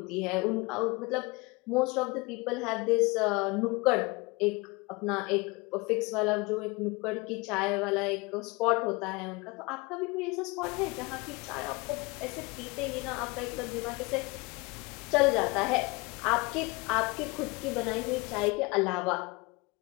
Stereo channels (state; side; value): quieter; right; 26.0 dB